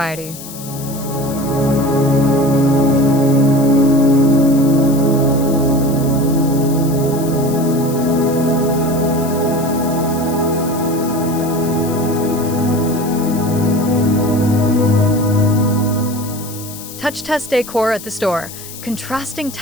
Touch test decor at the store. Contrasting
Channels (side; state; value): left; noise; hiss, 14 dB below the sound